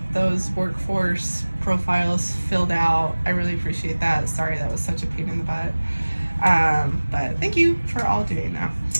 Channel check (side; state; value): both; inverted; correlation -1.00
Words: those workforce profiles filled out. I really appreciate that. Sorry that was such a pain in the butt. But thank you for all doing that.